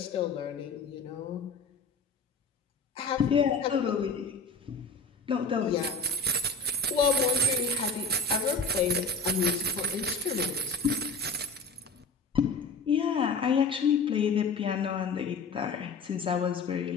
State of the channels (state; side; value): quieter; right; 3.1 dB